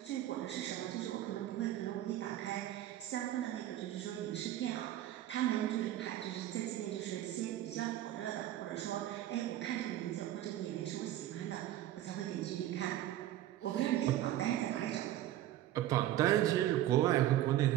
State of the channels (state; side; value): quieter; left; 13.3 dB